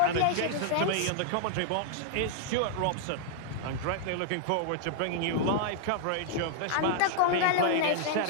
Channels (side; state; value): both; different; correlation -0.01